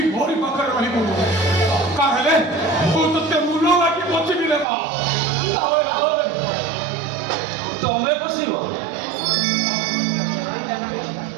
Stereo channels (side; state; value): left; drops out; at 4.7 s